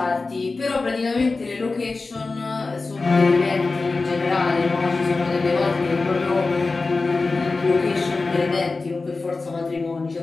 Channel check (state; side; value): quieter; right; 3.8 dB